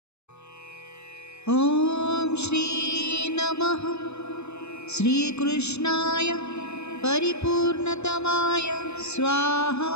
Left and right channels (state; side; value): late; right; 0.81 ms